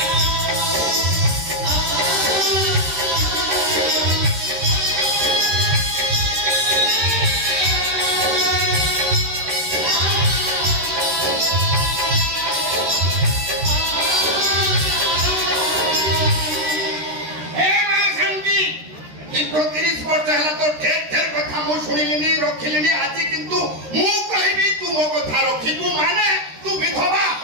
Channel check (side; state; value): left; late; 13 ms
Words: ଦୀର୍ଘ 30 ବର୍ଷ ହେଲା ତ ଢେର କଥା ମୁଁ ଶୁଣିଲିନି, ରଖିଲିନି। ଆଜି କିନ୍ତୁ ମୁଁ କହିବି ତୁ ମୋ କଥା ରଖିବୁ ମାନେ ତୁ ବିଧବା